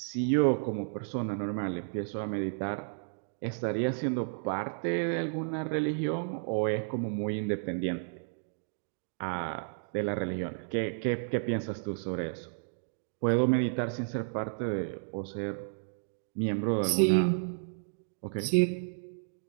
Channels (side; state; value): left; silent; digital silence